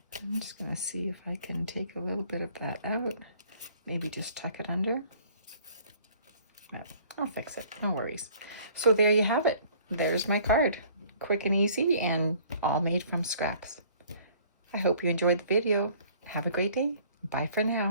I'm just going to see if I can take a little bit of that out. Maybe just tuck it under. I'll fix it. No worries. So there you have it. There's my card. Quick and easy and all made from scraps. I hope you enjoyed the video. Have a great day. Bye for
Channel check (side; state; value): both; inverted; correlation -0.55